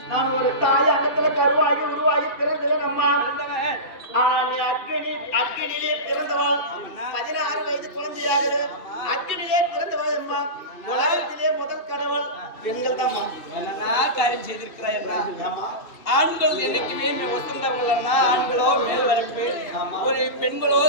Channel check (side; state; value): right; late; 2.7 ms